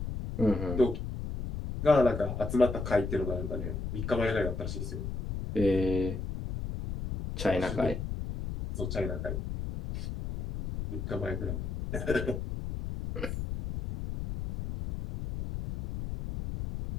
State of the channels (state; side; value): noise; left; rumble, 5 dB below the sound